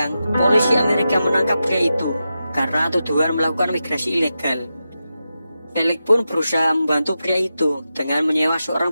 polisi Amerika menangkap pria itu karena tuduhan melakukan migrasi ilegal. Felix pun berusaha membantu pria itu dengan menyewa seorang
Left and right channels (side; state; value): both; inverted; correlation -0.90